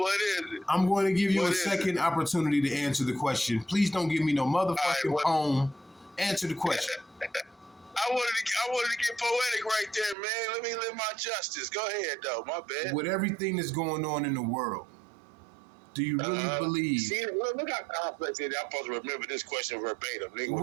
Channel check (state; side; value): drops out; left; at 10.2 s